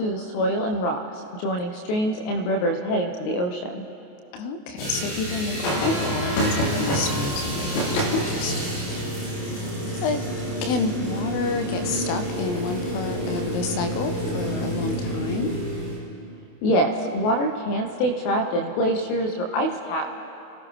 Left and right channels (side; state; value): right; late; 28 ms